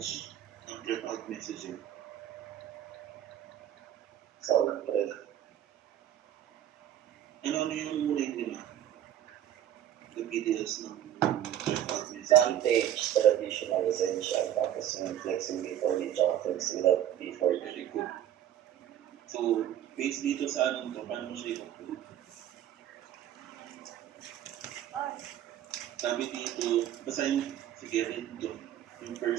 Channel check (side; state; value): left; quieter; 11.2 dB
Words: prep-out messaging? Sound prep. Ano yung muna yung lima? The videos ng prep-out messaging? Vantage, traditional, essential, tapos yung flexing before the tsaka flexing without before. Very good. So, based dito sa anong to, paano mo siya i-conclude? Sabi dito, basahin, sige, read to. Yung